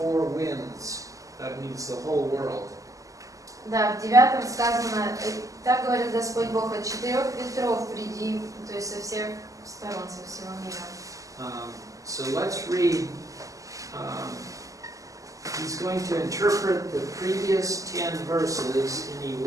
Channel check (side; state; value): left; late; 0.16 ms